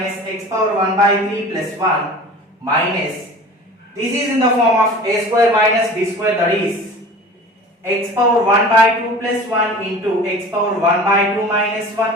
x power 1 by 3 plus 1 minus, this is in the form of a square minus b square, that is x power 1 by 2 plus 1 into x power 1 by 2 minus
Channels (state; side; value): normal; both; correlation 0.40